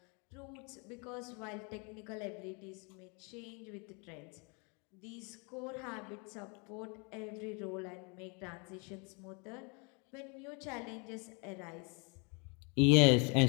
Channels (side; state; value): right; quieter; 33.4 dB